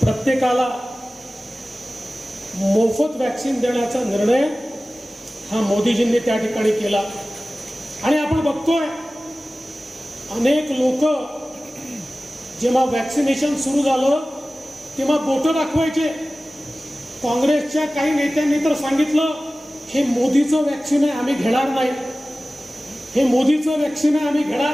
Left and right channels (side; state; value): both; normal; correlation 0.96